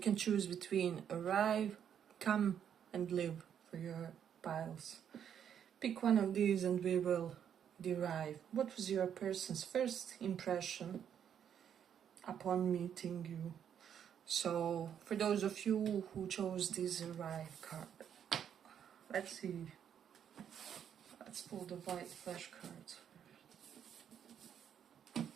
choose between arrive, come and live for your piles. Pick one of these and we will derive what was your person's first impression upon meeting you. So for those of you who chose this arrive card, let's see. Let's pull the white flash cards.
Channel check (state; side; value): quieter; left; 8.7 dB